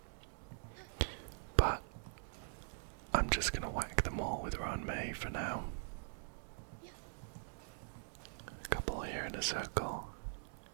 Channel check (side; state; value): left; silent; digital silence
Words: but I'm just gonna whack them all with Ranmei for now. A couple here in a circle.